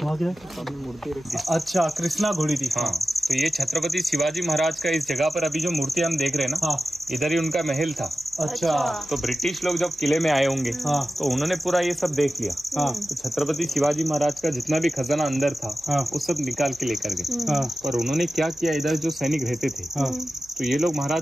वहाँ क्या मूर्ति। अच्छा, कृष्णा घोड़ी थी। हाँ, तो ये छत्रपति शिवाजी महाराज का इस जगह पर अभी जो मूर्ति हम देख रहे हैं ना, इधर ही उनका महल था। अच्छा, तो ब्रिटिश लोग जब किले में आए होंगे तो उन्होंने पूरा ये सब देख लिया। तो छत्रपति शिवाजी महाराज का जितना भी खजाना अंदर था वो सब निकाल के लेकर गए। पर उन्होंने क्या किया, इधर जो सैनिक रहते थे तो ये लोग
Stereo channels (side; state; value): right; noise; hum, 29 dB below the sound